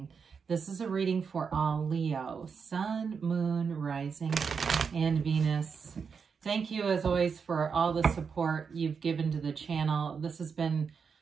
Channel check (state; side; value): quieter; left; 5.9 dB